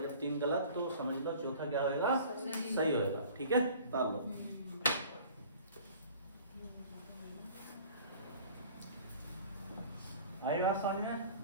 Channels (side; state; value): both; inverted; correlation -0.46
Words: जब 3 गलत तो समझ लो चौथा क्या होगा, सही होगा, ठीक है। ताल लो, आई बात समझ में।